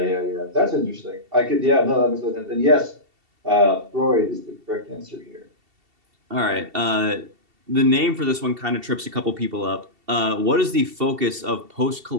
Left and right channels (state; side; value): late; left; 2.7 ms